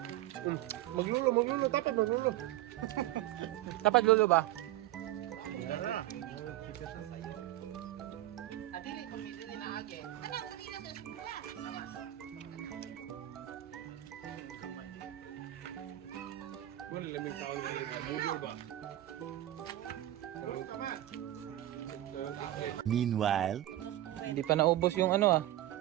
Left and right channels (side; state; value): left; quieter; 14.6 dB